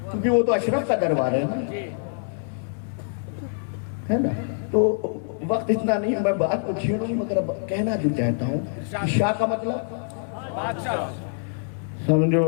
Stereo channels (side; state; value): right; silent; 62 dB below the other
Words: क्योंकि वो तो अशरफ का दरबार है ना। तो वक्त इतना नहीं, मैं बात को छेड़ूं, मगर कहना जो चाहता हूँ शाह का मतलब समझो।